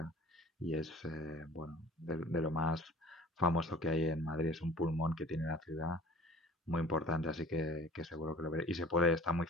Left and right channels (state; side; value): normal; both; correlation 0.46